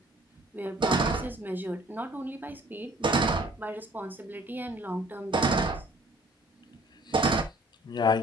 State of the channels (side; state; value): both; normal; correlation 0.56